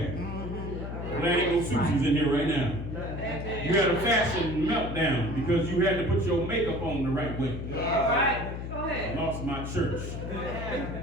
Well, there ain't no Susies in here right now. You had a fashion meltdown because you had to put your makeup on the right way. I lost my church.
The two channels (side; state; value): left; noise; hum, 6 dB below the sound